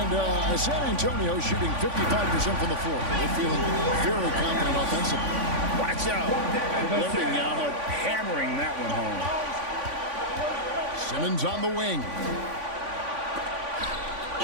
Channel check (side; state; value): left; late; 3.5 ms